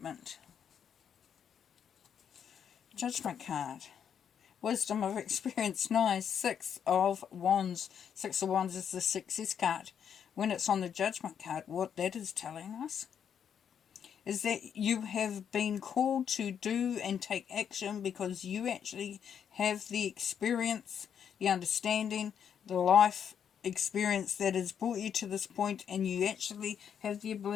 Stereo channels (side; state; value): right; quieter; 8.1 dB